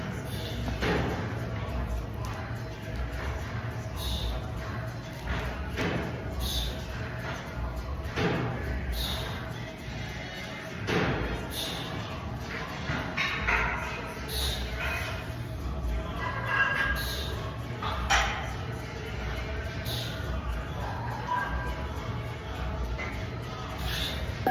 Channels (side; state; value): both; identical; correlation 1.00